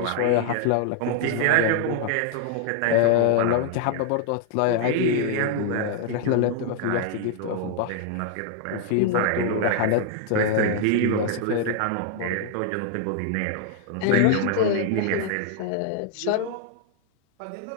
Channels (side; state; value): both; different; correlation 0.00